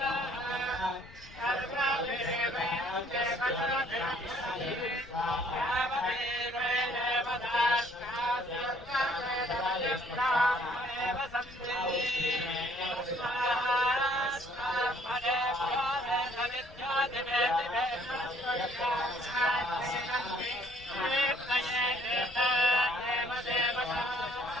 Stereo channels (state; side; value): noise; left; rumble, 21 dB below the sound